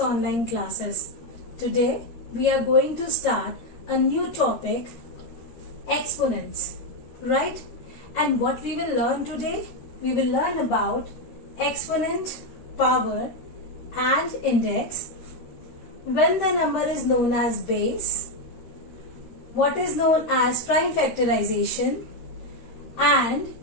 classes. Today we are going to start a new topic, exponents, right? And what we will learn today? We will learn about exponent, power and index, when the number is known as base, what is known as prime factorization, and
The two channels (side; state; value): right; late; 13 ms